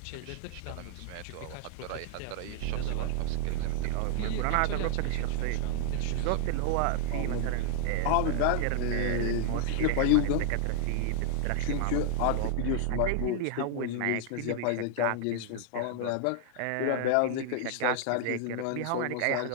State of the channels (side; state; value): both; different; correlation 0.00